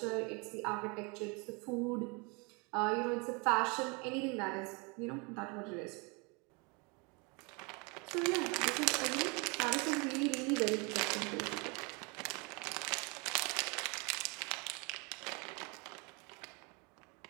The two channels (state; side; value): quieter; left; 30.7 dB